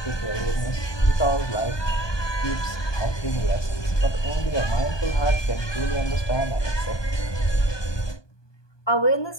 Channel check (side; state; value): right; late; 1.2 ms